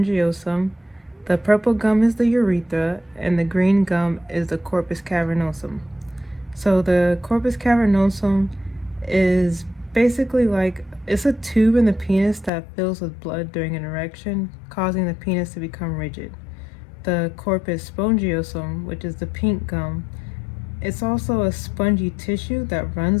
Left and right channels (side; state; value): right; drops out; at 12.5 s